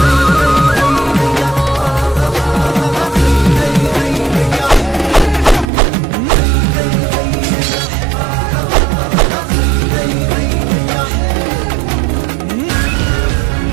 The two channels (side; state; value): left; drops out; at 5.7 s